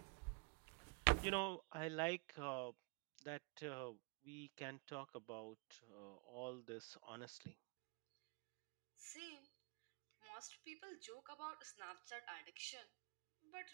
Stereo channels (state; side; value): quieter; left; 32.1 dB